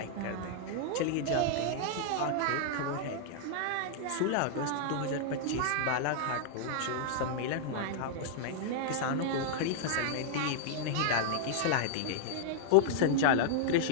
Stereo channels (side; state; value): both; different; correlation -0.01